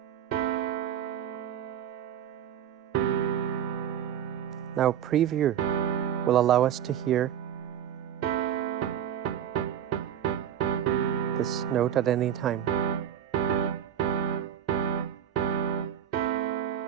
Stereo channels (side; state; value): left; quieter; 9.8 dB